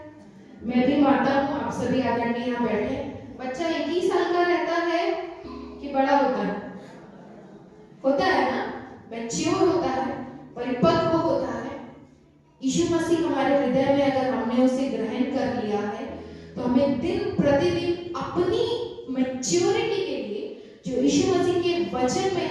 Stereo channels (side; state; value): both; identical; correlation 1.00